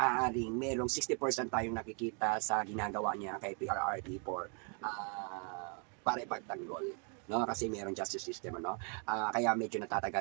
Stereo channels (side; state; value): left; quieter; 39.0 dB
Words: merong 60% tayong nakikita sa ginagawa niya kay PRRD para ipagtanggol, no? Kasi merong justice system, ano? Kaya medyo